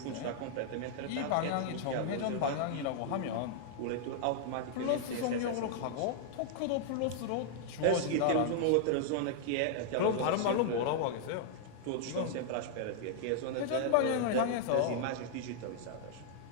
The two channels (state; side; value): different; both; correlation -0.01